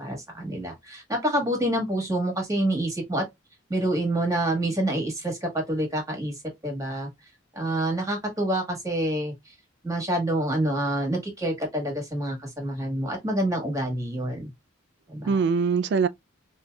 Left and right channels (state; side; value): normal; both; correlation 0.57